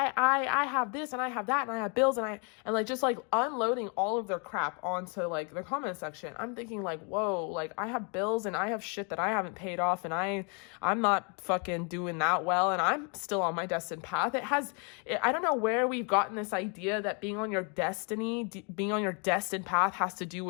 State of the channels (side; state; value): right; quieter; 36.2 dB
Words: have this and I have that and I have bills and like just like unloading all of their crap onto like the comment section. I'm thinking like, whoa, like I have bills and I have shit that I haven't paid off and I'm not fucking doing that well and I'm still on my destined path. I don't know where we've gotten this idea that being on your destiny, being on your destined path has to do